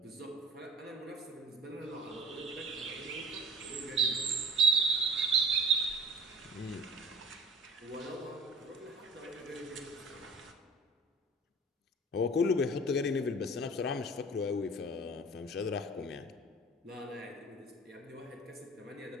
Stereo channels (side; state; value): both; normal; correlation 0.42